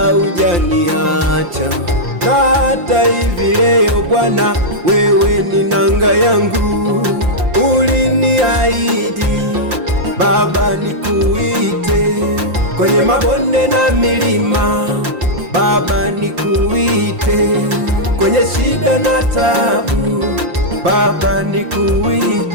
hujaniacha. Na hata hivi leo Bwana, wewe ni nanga yangu. Uliniahidi Baba nikuite kwenye mabonde na milima, Baba nikuite kwenye shida na tabu, Baba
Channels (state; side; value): late; left; 5.7 ms